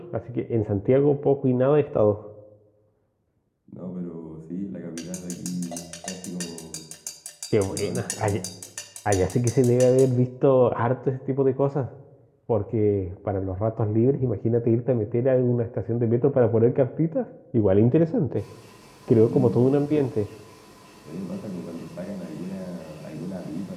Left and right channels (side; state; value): both; identical; correlation 1.00